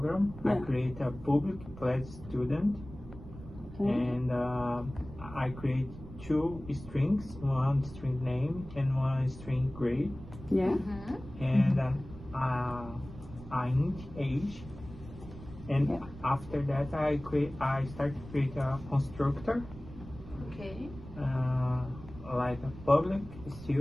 I Yeah. create a public class student, and I create 2 strings, one string name and one string grade, Yeah. and I int age. And Yeah. after that, I start to create a constructor. Okay. Like a public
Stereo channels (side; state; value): right; noise; rumble, 15 dB below the sound